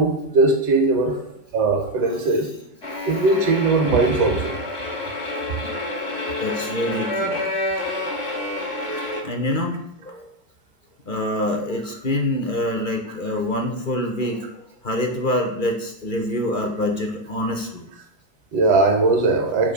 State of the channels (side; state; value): right; late; 2.4 ms